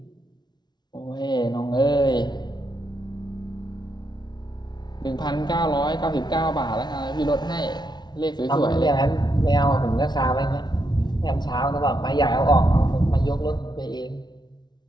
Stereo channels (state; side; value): late; right; 0.20 ms